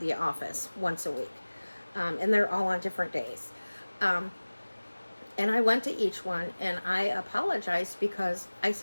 office once a week. And they're all on different days. And I went to each one and I apologized, because I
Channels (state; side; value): inverted; both; correlation -1.00